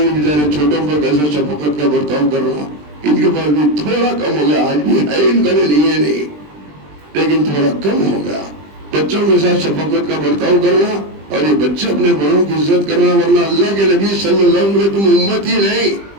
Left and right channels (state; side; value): late; left; 20 ms